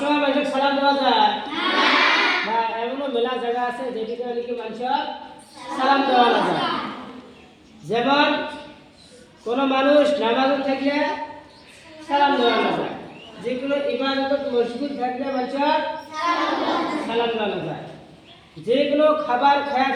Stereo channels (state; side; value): identical; both; correlation 1.00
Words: মানুষের সালাম দেওয়া যায় না, এমনও মেলা জায়গা আছে যেদিকে নাকি মানুষের সালাম দেওয়া না যায়। যেমন কোনো মানুষ নামাজে থাকলে সালাম দেওয়া না যায়, যেগুলো ইবাদত মসজিদ থাকলে মানুষের সালাম দেওয়া না যায়, যেগুলো খাবার খায়া